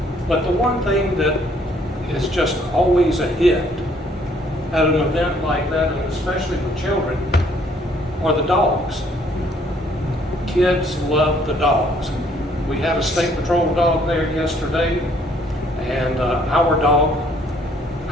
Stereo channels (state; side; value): normal; both; correlation 0.64